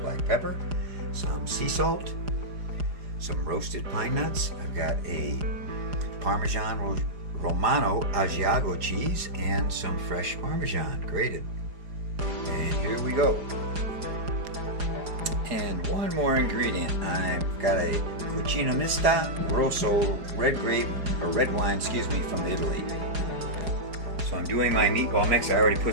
pepper, some sea salt, some roasted pine nuts. I've got a Parmesan Romano Asiago cheese and some fresh Parmesan grated. And here we go. And one more ingredient. I've got a Cucina Mista Rosso red wine, from Italy. So I'm doing my meatball mix. I already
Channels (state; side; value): late; left; 4.9 ms